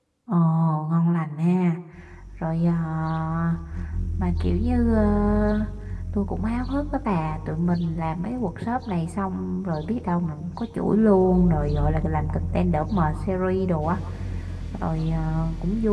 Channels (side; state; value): both; identical; correlation 1.00